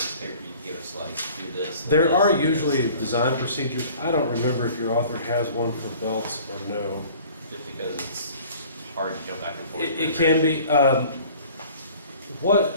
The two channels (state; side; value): inverted; both; correlation -0.49